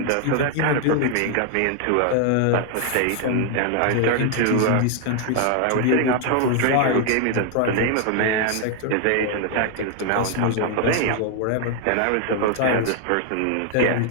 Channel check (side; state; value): both; different; correlation 0.00